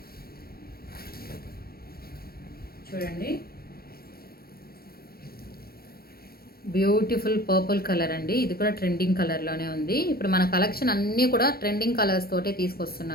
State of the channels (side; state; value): right; late; 0.44 ms